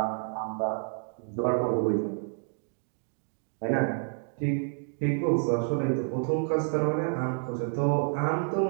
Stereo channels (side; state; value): left; silent; 58 dB below the other